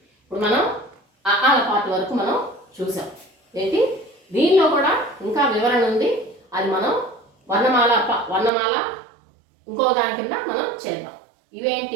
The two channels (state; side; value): drops out; left; at 8.5 s